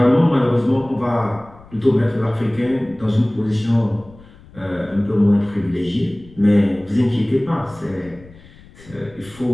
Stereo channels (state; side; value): noise; left; rumble, 23 dB below the sound